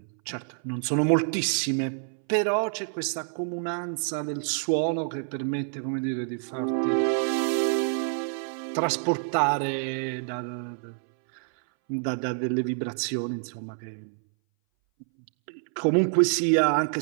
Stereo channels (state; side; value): silent; left; 60 dB below the other